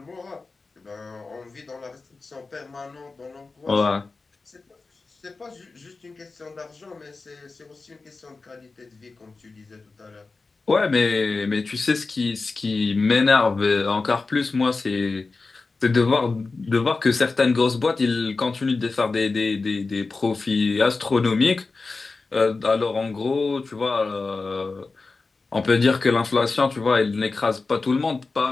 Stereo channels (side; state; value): right; quieter; 3.9 dB